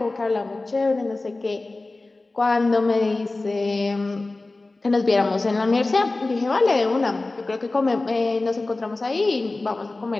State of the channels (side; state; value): right; quieter; 3.2 dB